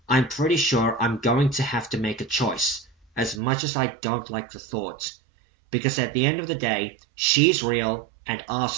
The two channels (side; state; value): left; drops out; at 3.4 s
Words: I'm pretty sure I'm going to have to make a choice, as much as I don't like the thought. Because at the end of the day, she's real and